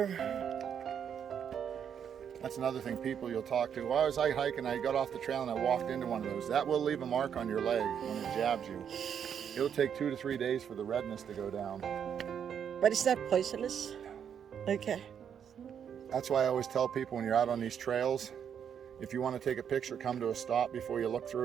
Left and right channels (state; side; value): quieter; left; 8.1 dB